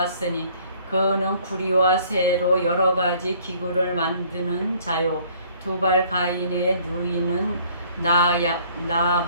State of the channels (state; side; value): inverted; both; correlation -0.58